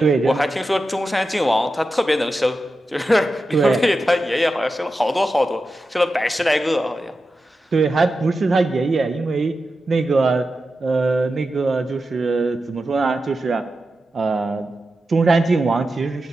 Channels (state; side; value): normal; both; correlation 0.91